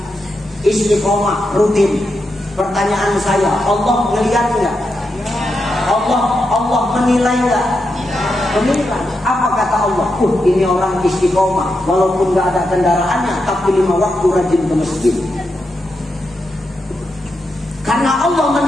istiqomah, rutin. Pertanyaan saya, Allah melihat nggak? Allah menilai nggak? Menilai. Apa kata Allah? Ini orang istiqomah, walaupun nggak ada kendaraannya, tapi 5 waktu rajin ke masjid. Karena Allah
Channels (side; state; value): both; normal; correlation 0.86